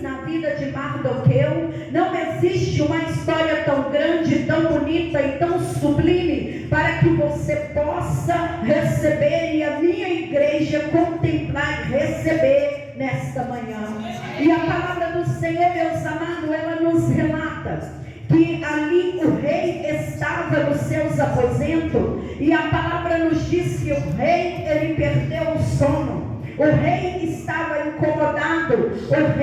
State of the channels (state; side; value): identical; both; correlation 1.00